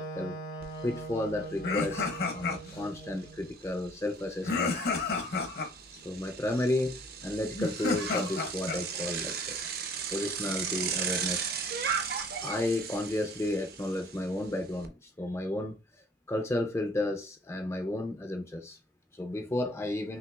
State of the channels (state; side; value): normal; both; correlation 0.57